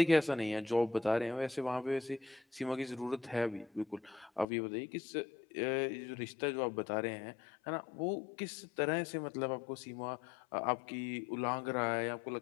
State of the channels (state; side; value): drops out; right; at 4.5 s